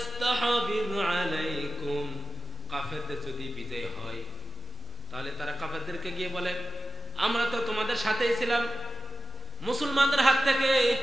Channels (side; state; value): both; normal; correlation 0.96